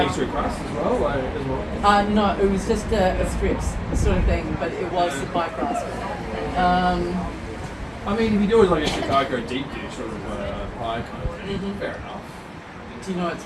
pastry crust as well. No, it was just a strips sort of thing, but it was the pie crust. I mean, if you do it like a Chicago deep dish sort of pie kind of thing, fair enough. Do you know what's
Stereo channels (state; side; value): identical; both; correlation 1.00